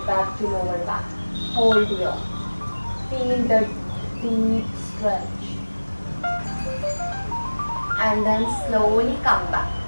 back to lower back. Hold here. Feel the deep stretch. And then slowly come back.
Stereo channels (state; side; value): inverted; both; correlation -1.00